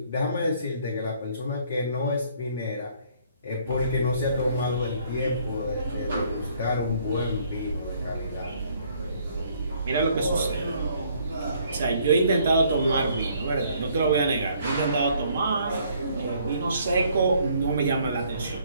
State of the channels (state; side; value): inverted; both; correlation -0.64